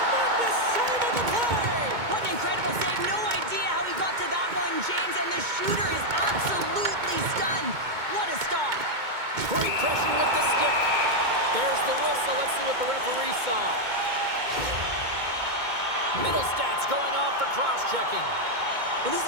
save of the play! What an incredible save. No idea how he got to that one, James. And the shooter is absolutely stunned. What a stop. Great pressure with the stick. There's the whistle. Let's see what the referee saw. Middle stats going off for cross-checking. Well, this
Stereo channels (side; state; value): left; late; 2.2 ms